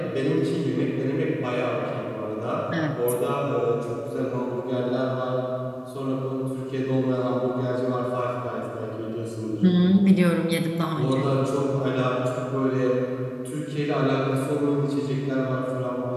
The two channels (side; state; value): both; identical; correlation 1.00